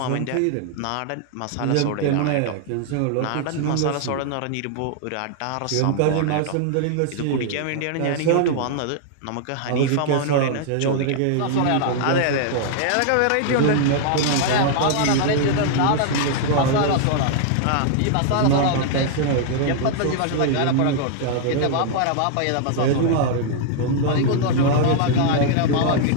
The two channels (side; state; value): both; different; correlation 0.00